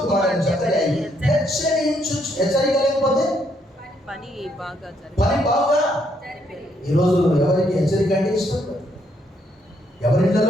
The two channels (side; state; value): both; normal; correlation 0.72